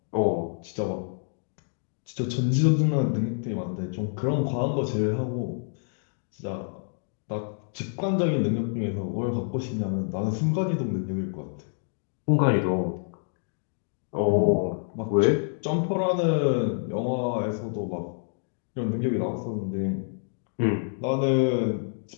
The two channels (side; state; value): right; silent; digital silence